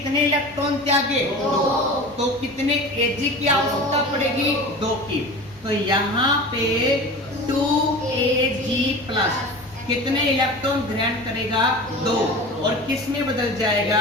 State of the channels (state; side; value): normal; both; correlation 0.34